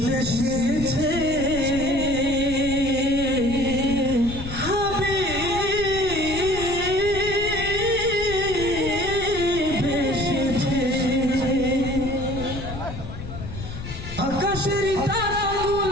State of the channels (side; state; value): left; noise; rumble, 9 dB below the sound